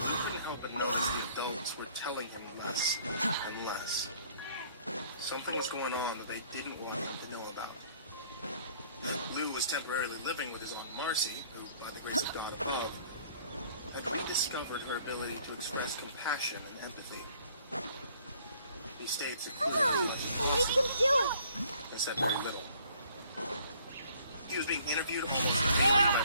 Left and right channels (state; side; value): inverted; both; correlation -0.59